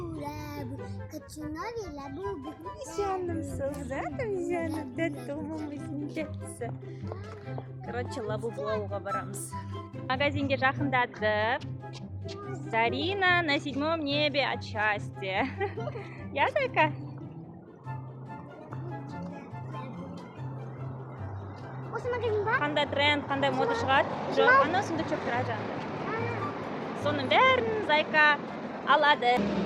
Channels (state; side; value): identical; both; correlation 1.00